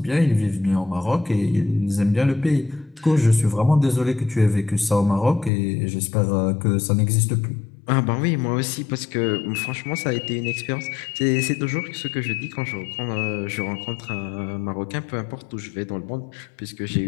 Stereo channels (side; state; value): right; drops out; at 5.5 s